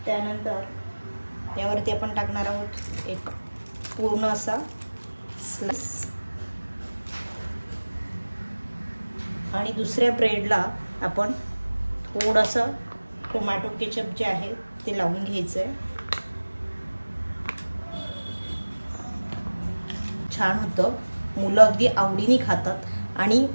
त्यानंतर यावरती आपण टाकणार आहोत एक पूर्ण असा स्लाइस आणि दुसऱ्या ब्रेडला आपण थोडंसं टोमॅटो केचप जे आहे ते लावून घ्यायचंय। छान होतं, मुलं अगदी आवडीने खातात आणि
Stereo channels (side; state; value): both; inverted; correlation -1.00